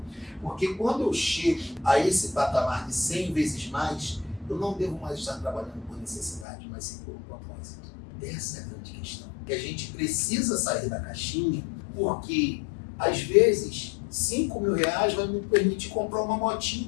Porque quando eu chego a esse patamar de 100 vezes mais, eu não devo mais estar trabalhando por necessidade, mas sim por propósito. Essa é a grande questão. Que a gente precisa sair da caixinha, porque às vezes R$5.000 vai me permitir comprar uma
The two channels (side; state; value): right; drops out; at 6.5 s